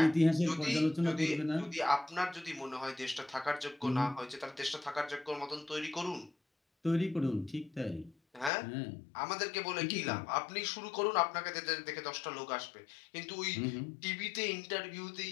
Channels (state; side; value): drops out; right; at 8.5 s